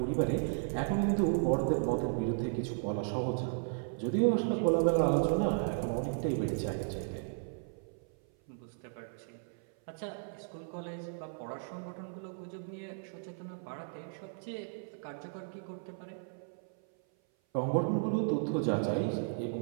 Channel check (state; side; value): silent; left; 55 dB below the other